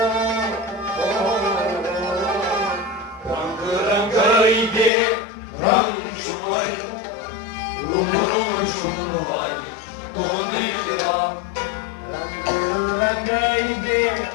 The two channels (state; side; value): drops out; right; at 4.9 s